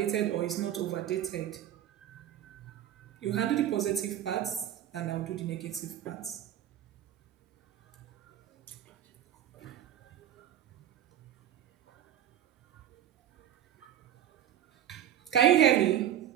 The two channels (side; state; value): left; quieter; 11.0 dB